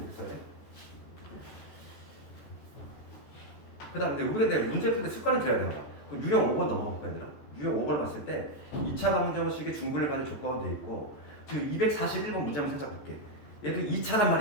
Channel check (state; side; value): late; right; 14 ms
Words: 있어야 돼. 그 다음에 우리가 문제 풀 때 습관을 들여야 돼요. 그 유형 5번 넘어가 볼까 얘들아? 유형 5번을 봤을 때 2차 방정식의 중분을 받을 조건은 돼 있고 지금 241번 문제 한번 살짝 볼게. 얘도 2차란